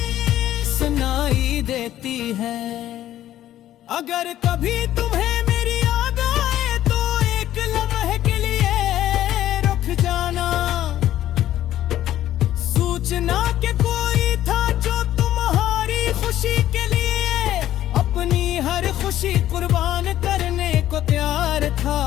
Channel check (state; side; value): quieter; right; 12.8 dB